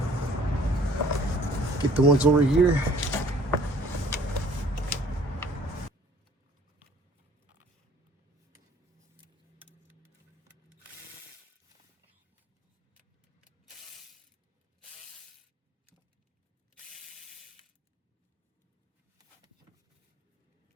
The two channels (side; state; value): both; normal; correlation 0.55